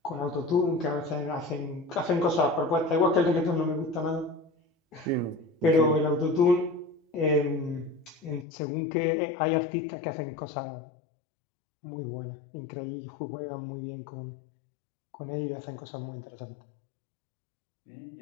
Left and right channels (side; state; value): right; drops out; at 8.5 s